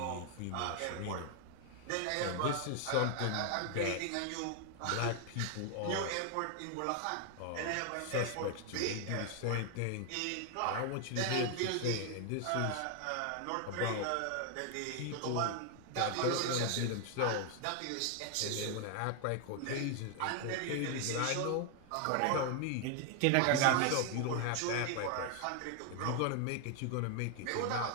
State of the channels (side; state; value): both; different; correlation 0.00